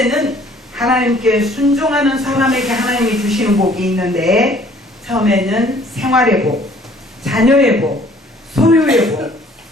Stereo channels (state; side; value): normal; both; correlation 0.57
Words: 하나님께 순종하는 사람에게 하나님이 주시는 복이 있는데, 처음에는 생활의 복, 자녀의 복, 소유의 복,